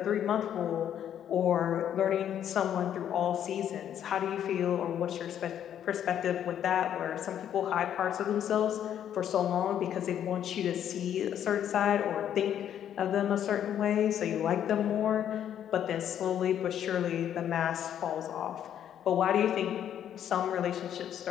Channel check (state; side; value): quieter; right; 10.0 dB